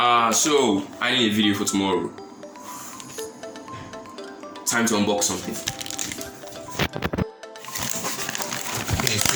so I need a video for tomorrow. Time to unbox something. Okay,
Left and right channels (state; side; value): identical; both; correlation 1.00